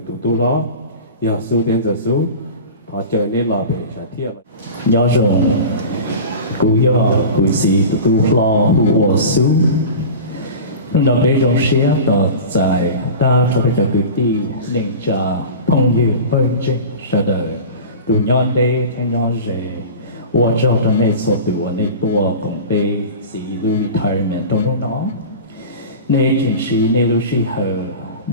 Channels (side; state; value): both; inverted; correlation -0.33